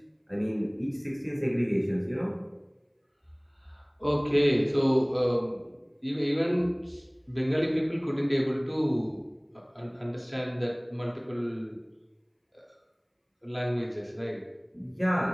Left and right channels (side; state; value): both; identical; correlation 1.00